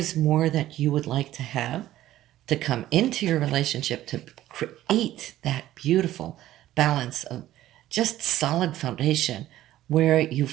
more that you would like to have to come into your relationship to create that beautiful balance of just solid foundation where you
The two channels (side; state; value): left; quieter; 14.0 dB